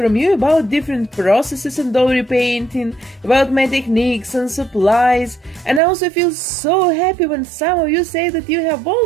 you about different processes in doll repainting, about my techniques and supplies, and I also feel so happy when some of you say that you have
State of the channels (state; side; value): drops out; left; at 5.8 s